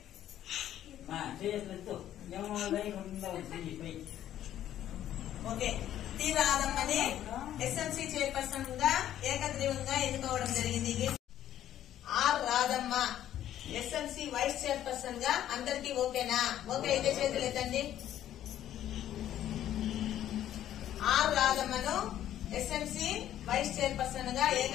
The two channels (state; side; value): quieter; right; 11.7 dB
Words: ఓకే, టి రాధమ్మని ఎస్ఎంసి చైర్పర్సన్ గా ఏకగ్రీవంగా ఎన్నుకోవడం జరిగింది. R Radhamma SMC vice chairperson గా. అందరికి ఓకేనా? ఓకే అయితే చేతులు ఎత్తండి. ఆర్ రాధమ్మను ఎస్ఎంసి వైస్ చైర్పర్సన్ గా